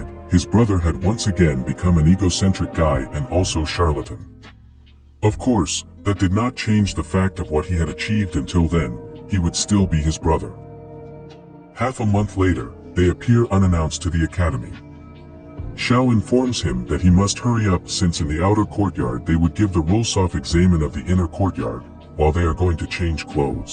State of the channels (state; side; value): identical; both; correlation 1.00